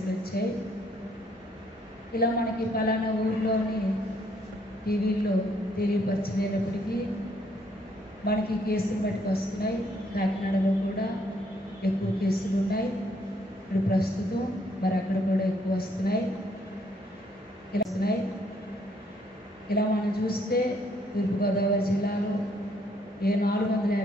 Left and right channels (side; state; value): both; normal; correlation 0.68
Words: వచ్చాయి. ఇలా మనకి పలానా ఊరిలోని టీవీల్లో తెలియపరచలేనప్పటికీ మనకి కేసులు బట్టి వస్తున్నాయి. కాకినాడలో కూడా ఎక్కువ కేసులు ఉన్నాయి ఇప్పుడు ప్రస్తుతం. మరి అక్కడ కూడా ఎక్కువ వస్తున్నాయి. ఇలా మనం చూస్తే తూర్పుగోదావరి జిల్లాలో